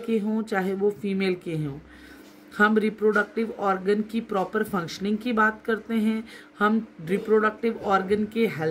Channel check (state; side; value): identical; both; correlation 1.00